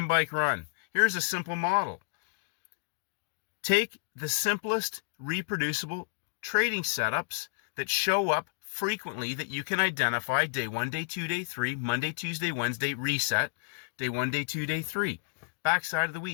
bike, run. Here's a simple model. Take the simplest reproducible trading setups that show up frequently that you can identify. Day 1, day 2, day 3, Monday, Tuesday, Wednesday, reset. Day 1, day 2, day 3. Backside of the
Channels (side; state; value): right; silent; digital silence